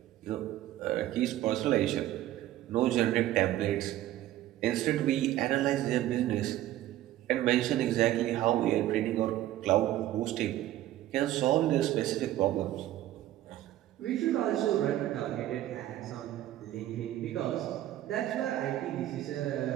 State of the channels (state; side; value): quieter; left; 13.9 dB